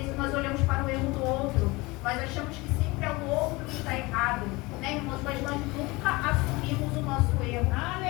nós olhamos para o erro do outro, nós achamos que sempre é o outro que está errado, né, irmãos? Mas nós nunca assumimos o nosso erro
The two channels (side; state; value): right; quieter; 23.1 dB